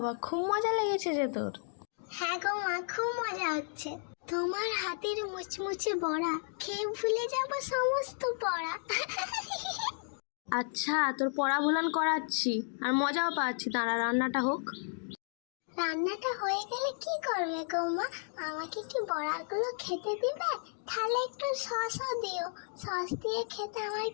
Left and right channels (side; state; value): right; silent; 56 dB below the other